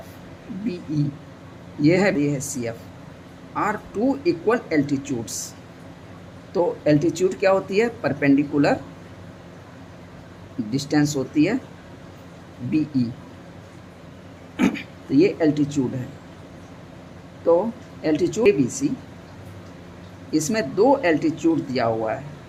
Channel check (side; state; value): both; identical; correlation 1.00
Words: BE ये है CF are two equal altitudes. तो एल्टीट्यूड क्या होती है, परपेंडिकुलर डिस्टेंस होती है BE, तो ये एल्टीट्यूड है। तो एल्टीट्यूड ABC, इसमें दो एल्टीट्यूड दिया हुआ है।